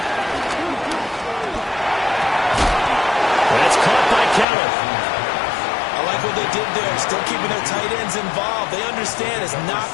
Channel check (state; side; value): drops out; right; at 4.5 s